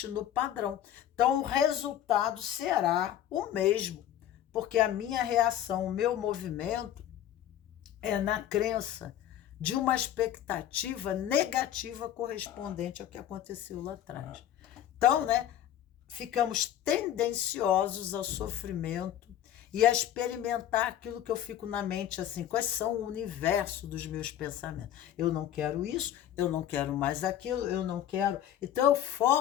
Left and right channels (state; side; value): quieter; right; 11.3 dB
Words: no padrão. Então, o resultado será o mesmo, porque a minha reação, o meu movimento é na crença de uma expectativa negativa correspondente ao que aconteceu lá atrás. Então, né, ficamos tendenciosos ao sofrimento e a experimentar aquilo que eu fico na mente, assim, quais são o universo dos meus pensamentos. Eu não quero isso, eu não quero mais aquilo, eu não quero. Então eu